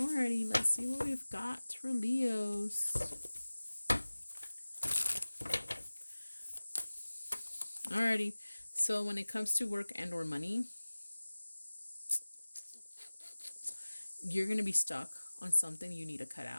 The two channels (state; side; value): inverted; both; correlation -1.00